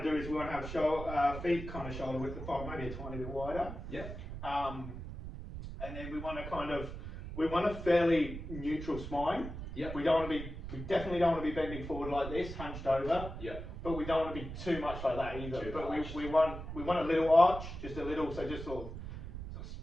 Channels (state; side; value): noise; right; rumble, 9 dB below the sound